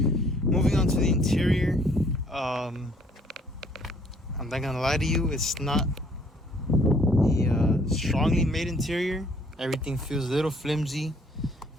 Moving on to the interior, I'm not gonna lie to you, it's not a strongly made interior. Everything feels a little flimsy.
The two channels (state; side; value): normal; both; correlation 0.61